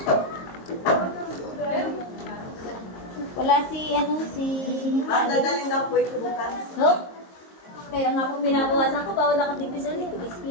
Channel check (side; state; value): right; late; 22 ms